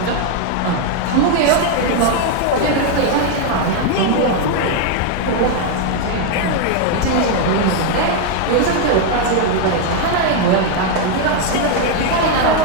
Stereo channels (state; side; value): different; both; correlation 0.01